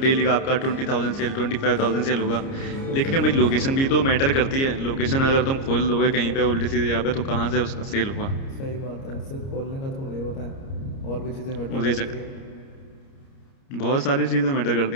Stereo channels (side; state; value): right; late; 30 ms